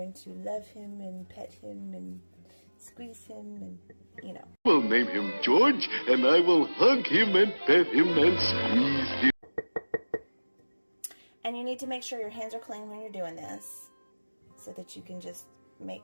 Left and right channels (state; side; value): inverted; both; correlation -1.00